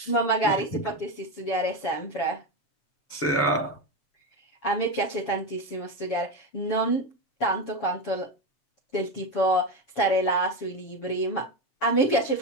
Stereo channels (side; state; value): right; late; 7.2 ms